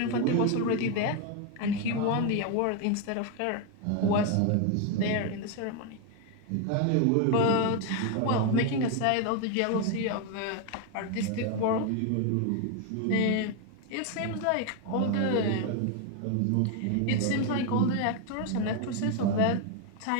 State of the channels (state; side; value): different; both; correlation 0.01